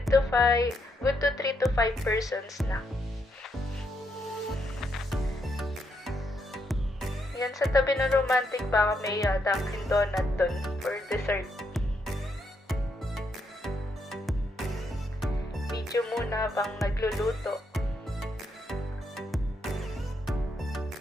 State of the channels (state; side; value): normal; both; correlation 0.78